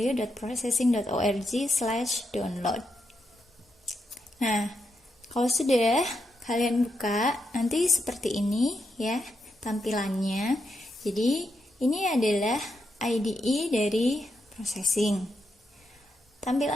Nah, kalau sudah kalian buka, nanti seperti ini ya tampilannya. Jadi ini adalah IDE dari processing.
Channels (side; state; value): both; normal; correlation 0.83